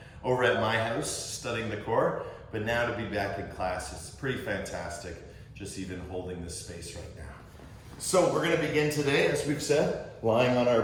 over at my house studying the core, but now to be back in class is pretty fantastic, just even holding this space right now. So we're gonna begin today, as we've said, lying on our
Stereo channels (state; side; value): identical; both; correlation 1.00